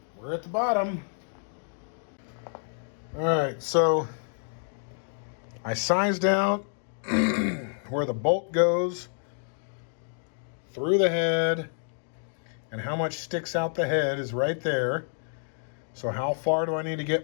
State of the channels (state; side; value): silent; right; 59 dB below the other